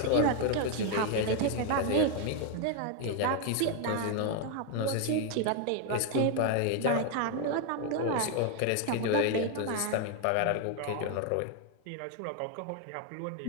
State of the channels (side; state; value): both; different; correlation 0.00